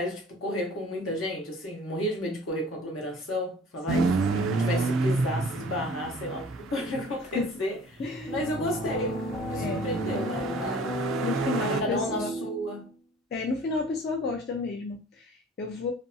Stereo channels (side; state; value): both; normal; correlation 0.48